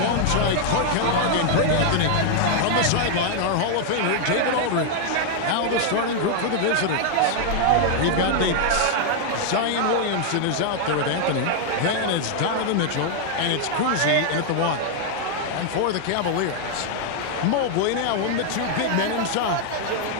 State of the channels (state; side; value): different; both; correlation 0.00